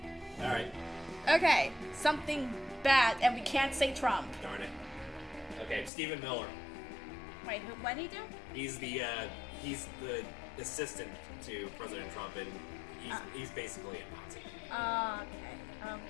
Alright. Okay, something bad, and we can't say Trump. Darn it. Okay, Stephen Miller. Wait, what did he do? He's the assistant to President Trump, and he's basically a Nazi. Okay.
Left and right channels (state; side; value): drops out; right; at 5.9 s